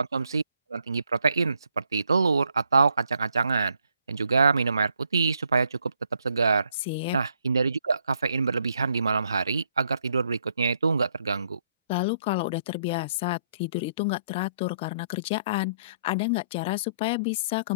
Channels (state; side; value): inverted; both; correlation -0.69